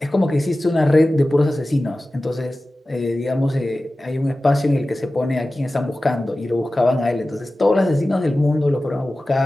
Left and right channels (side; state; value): both; normal; correlation 0.95